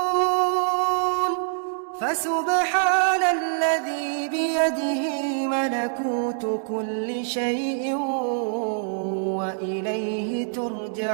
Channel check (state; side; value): silent; left; digital silence